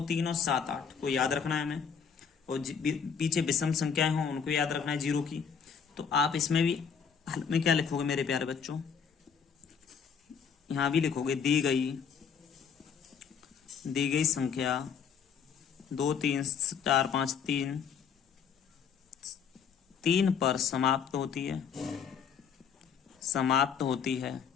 3 और 7, 8 को याद रखना है हमें, और पीछे विषम संख्याएं हों उनको याद रखना है 0 की। तो आप इसमें भी हल में क्या लिखोगे मेरे प्यारे बच्चों, यहाँ भी लिखोगे दी गई संख्या 2, 3, 4, 5, 3 पर समाप्त होती है,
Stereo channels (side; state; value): right; quieter; 6.8 dB